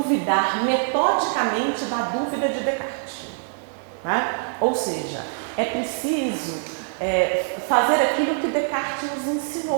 metodicamente da dúvida de Descartes. Ou seja, é preciso fazer aquilo que Descartes nos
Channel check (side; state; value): left; silent; digital silence